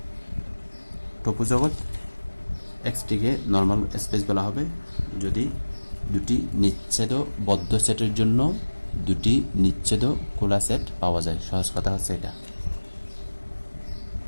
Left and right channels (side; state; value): both; inverted; correlation -1.00